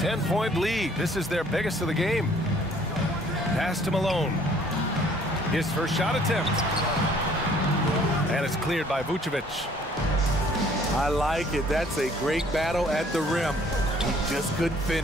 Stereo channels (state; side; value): normal; both; correlation 0.59